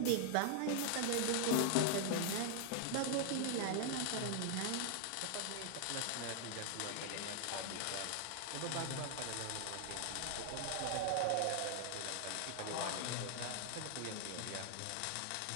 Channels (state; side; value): different; both; correlation 0.00